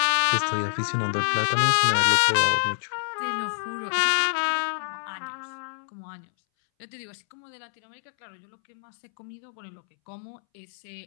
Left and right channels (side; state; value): right; silent; 60 dB below the other